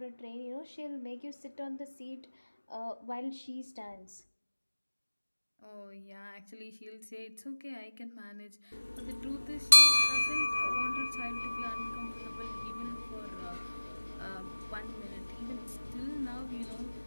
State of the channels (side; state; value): both; inverted; correlation -1.00